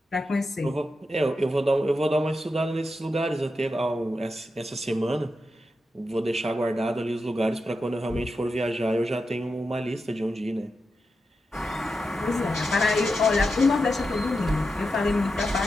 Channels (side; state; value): both; normal; correlation 0.88